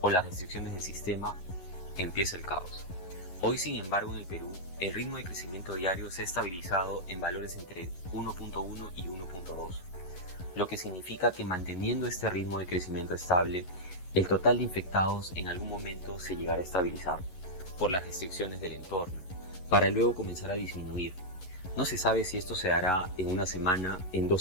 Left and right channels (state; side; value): late; right; 11 ms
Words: o las restricciones del sistema, empieza el caos. Hoy, sin embargo, en el Perú, el ritmo de crecimiento diario se ha estabilizado en valores entre 1.1 y 1.2, lo que significa que manteniendo este ritmo de crecimiento estable, el total de infectados en algún momento se llegará a estabilizar por las restricciones del entorno, para luego comenzar a disminuir. No se sabe si esto se hará en una semana, en 2